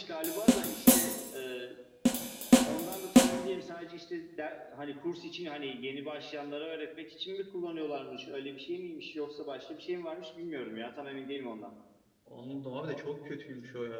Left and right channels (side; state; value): both; identical; correlation 1.00